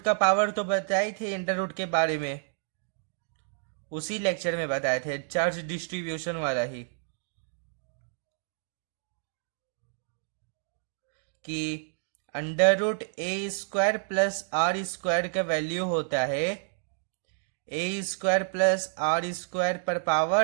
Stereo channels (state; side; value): silent; left; digital silence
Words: का पावर। तो बताए थे अंडर रूट के बारे में, उसी लेक्चर में बताए थे, चार्ज डिस्ट्रीब्यूशन वाला ही, कि under root a square plus r square का वैल्यू होता है a square plus r square पर